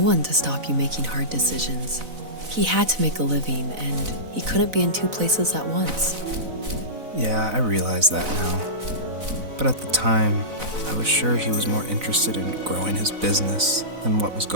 to stop you making hard decisions. He had to make a living, and he couldn't be in two places at once. Yeah, I realize that now. But at the time, I was sure he was more interested in growing his business than what was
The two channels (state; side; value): late; left; 4.0 ms